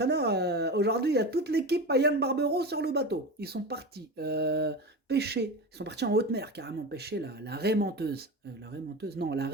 Aujourd'hui il y a toute l'équipe à Yann Barbero sur le bateau. Ils sont partis pêcher, ils sont partis en haute mer carrément pêcher la raie menteuse. La raie menteuse, non, la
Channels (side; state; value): both; normal; correlation 0.26